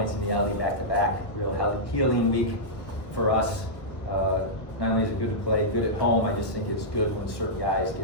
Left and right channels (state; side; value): late; right; 1.0 ms